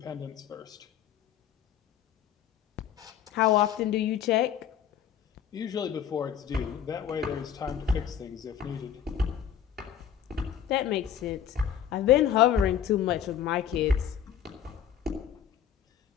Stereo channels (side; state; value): right; quieter; 9.2 dB